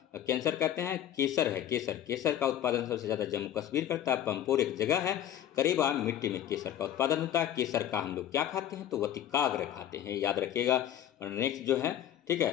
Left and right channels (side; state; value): right; quieter; 11.0 dB